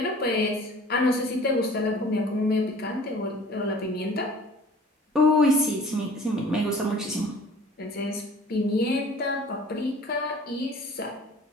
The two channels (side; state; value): both; normal; correlation 0.48